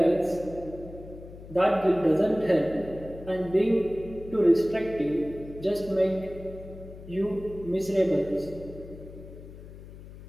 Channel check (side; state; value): left; noise; hum, 16 dB below the sound